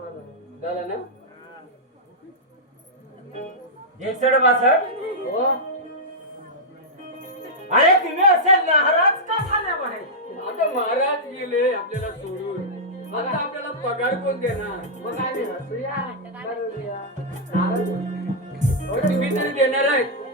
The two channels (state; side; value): normal; both; correlation -0.08